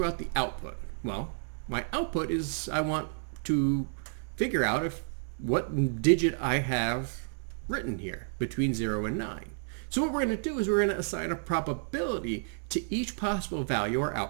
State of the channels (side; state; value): left; silent; 57 dB below the other